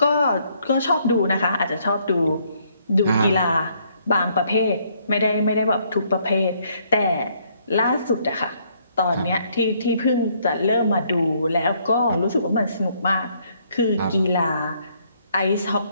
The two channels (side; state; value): both; inverted; correlation -0.68